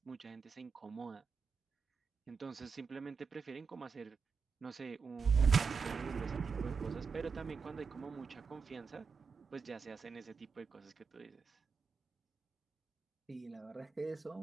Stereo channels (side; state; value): left; quieter; 5.4 dB